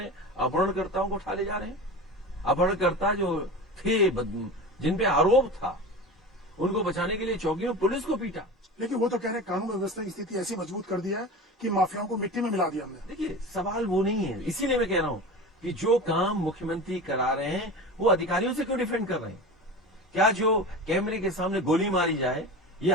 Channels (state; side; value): normal; both; correlation 0.30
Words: हैं, अपहरणकर्ताओं को उठा ले जा रहे हैं। अपहरणकर्ता जो थे, जिन पे आरोप था, उनको बचाने के लिए चौकियों पुलिस को पीटा। लेकिन वो तो कह रहे हैं कानून व्यवस्था की स्थिति ऐसी मजबूत कर दी है कि माफियाओं को मिट्टी में मिला दिया हमने। देखिए, सवाल वो नहीं है। इसीलिए मैं कह रहा हूं कि जो काम मुख्यमंत्री करा रहे हैं, वो अधिकारियों से क्यों डिफेंड कर रहे हैं? क्या जो कैमरे के सामने गोली मारी जाए, ये